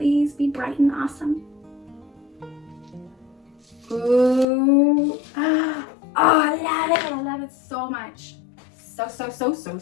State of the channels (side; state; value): right; drops out; at 4.5 s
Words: be bright and awesome. Ooh. Oh, I love it. I love it so much. So